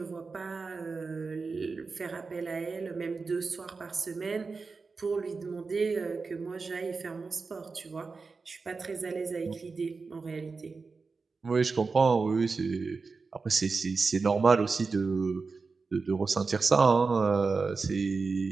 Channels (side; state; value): left; quieter; 4.4 dB